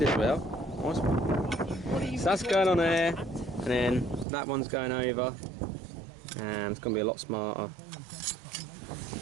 as well. Nice one. So that's going on there, and then that one's going over, and it's going to be a lot smarter.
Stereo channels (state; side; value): drops out; left; at 4.2 s